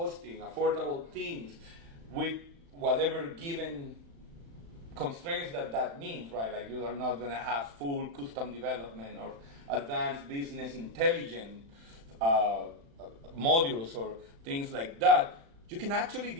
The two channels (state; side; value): late; left; 35 ms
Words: affordable themes, with whatever given constraints that means, right? Like you are not going to have full custom development or advanced business intelligence modules or things like that. You can actually